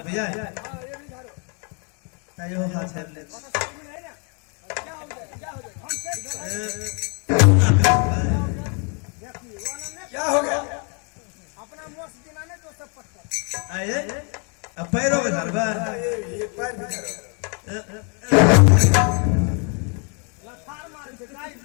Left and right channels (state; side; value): quieter; right; 37.2 dB